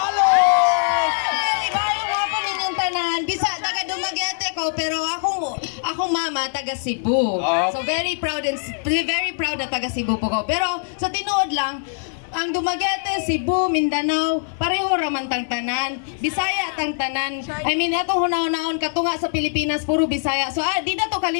Ibayo nga po ninyong tanan. Bisa, taga Dumaguete ko, pero akong mama, taga Cebu. So very proud na taga Cebu po ko. Pero sa tinuod lang, ang Dumaguete, Cebu, Mindanao, pareho raman tang tanan. Bisaya tang tanan. I mean, atong hunaon-naon katunga sa Pilipinas, puro Bisaya. So, di na to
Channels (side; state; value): right; silent; 58 dB below the other